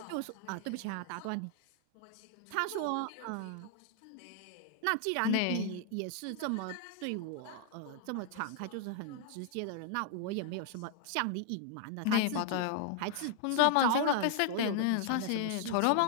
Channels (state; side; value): different; both; correlation 0.00